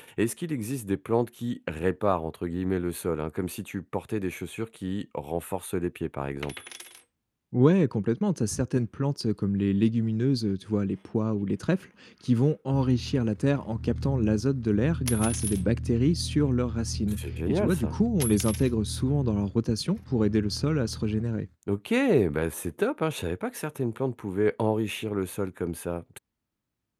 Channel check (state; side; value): identical; both; correlation 1.00